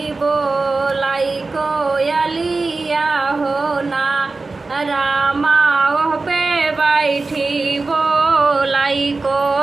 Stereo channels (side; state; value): left; quieter; 3.7 dB